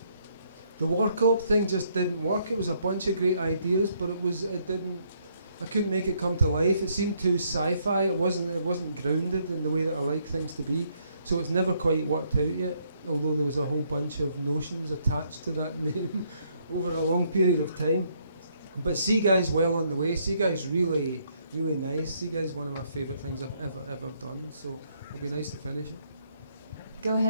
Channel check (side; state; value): both; inverted; correlation -0.70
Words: The War Cop thing just didn't work. It was a bunch of great ideas, but it didn't. I couldn't make it come to life. It seemed too sci-fi. It wasn't grounded in the way that I like things to be. So it's never quite worked out yet. although there was a whole bunch of notions attached to that name over a long period of time. But Sea Guy's well on the way. Sea Guy's really, really nice. Sea Guy's one of my favourite things I've ever done, so it'll be nice to finish it. Go